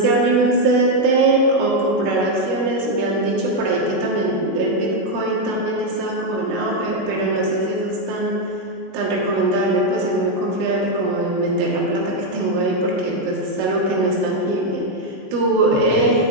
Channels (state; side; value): normal; both; correlation 0.03